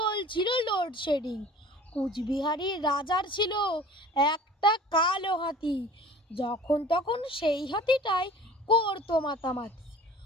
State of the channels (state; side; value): normal; both; correlation 0.45